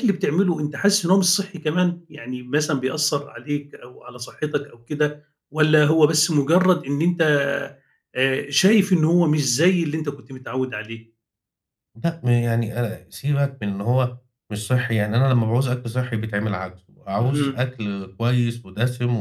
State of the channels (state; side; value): identical; both; correlation 1.00